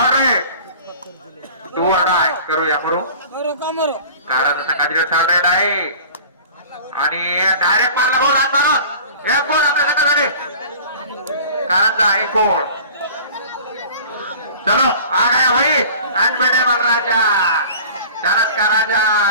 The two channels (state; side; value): inverted; both; correlation -0.43